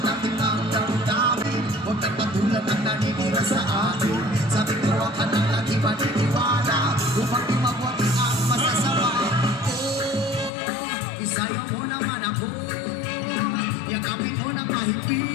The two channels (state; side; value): drops out; right; at 10.5 s